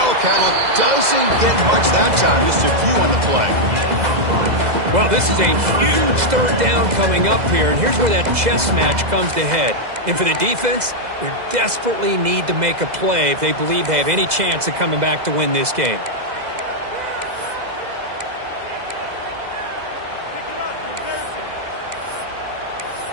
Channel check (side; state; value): left; late; 2.0 ms